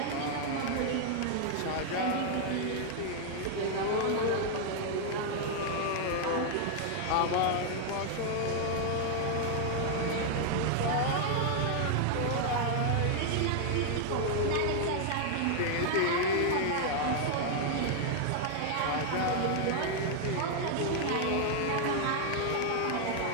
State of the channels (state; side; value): different; both; correlation 0.00